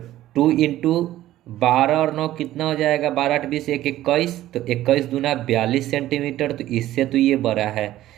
2 इंटू 12 और 9 कितना हो जाएगा? 12 8 20 1 21, तो 21 दूना 42 सेंटीमीटर, तो इससे तो ये बड़ा है।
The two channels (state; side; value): quieter; left; 14.3 dB